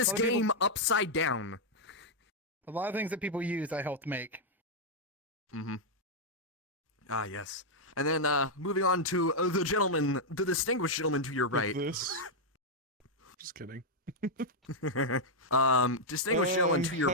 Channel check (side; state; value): both; normal; correlation -0.03